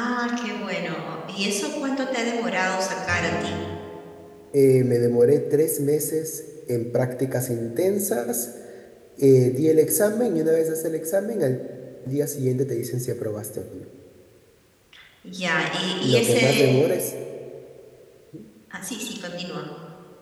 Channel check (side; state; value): both; identical; correlation 1.00